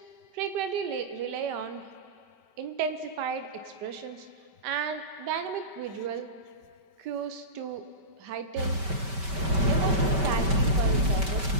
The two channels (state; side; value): late; left; 5.2 ms